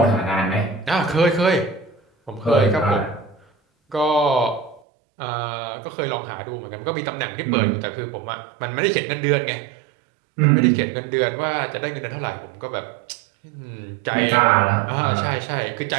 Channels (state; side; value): drops out; left; at 4.8 s